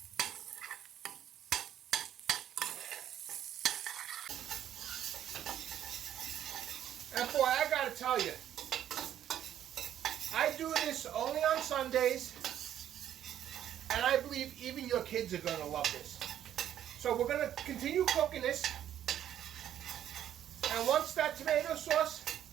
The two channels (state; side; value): quieter; left; 10.9 dB